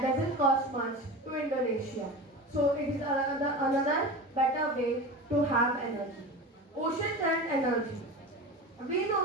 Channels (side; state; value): both; normal; correlation 0.29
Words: doesn't cost much to Indonesia. So it is another better way to have energy. Ocean current energy. We